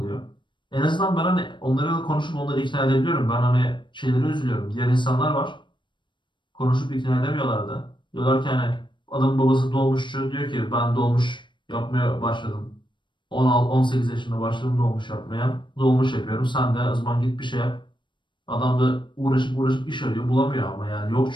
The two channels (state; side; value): late; right; 0.23 ms